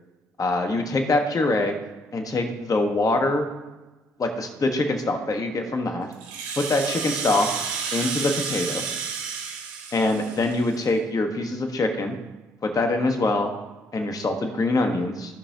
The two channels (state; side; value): normal; both; correlation 0.69